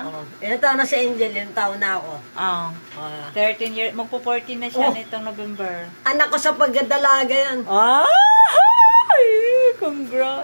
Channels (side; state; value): both; inverted; correlation -1.00